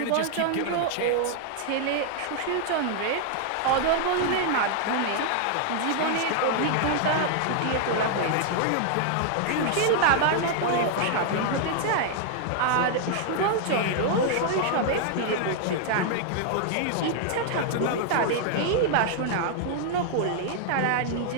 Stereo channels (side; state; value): both; different; correlation 0.00